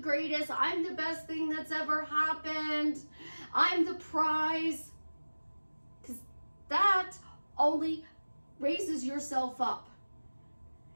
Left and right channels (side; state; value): both; inverted; correlation -1.00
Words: I'm the best thing that's ever happened, I'm the prize. Because that only raises yourself up.